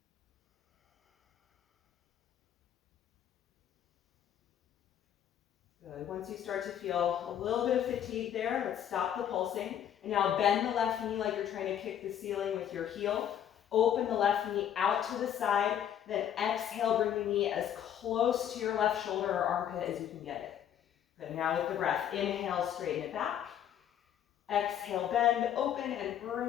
Good. Once you start to feel a little bit of fatigue there, let's stop the pulsing. And now bend the left knee like you're trying to kick the ceiling with your heel. Open the left knee out to the side. Then exhale, bring the knee as close to your left shoulder or armpit as you can get it. Good. Now with the breath, inhale, straighten it back. Exhale, bend, open, and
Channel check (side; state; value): right; quieter; 9.9 dB